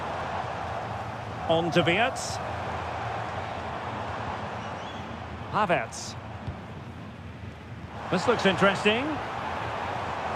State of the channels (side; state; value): both; identical; correlation 1.00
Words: On to Wirtz. Havertz. This looks interesting.